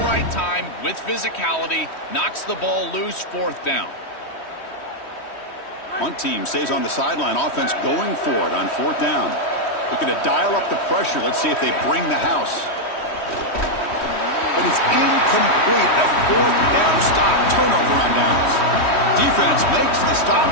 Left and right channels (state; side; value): late; right; 3.1 ms